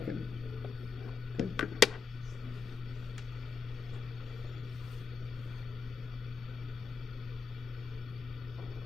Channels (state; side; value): quieter; right; 5.9 dB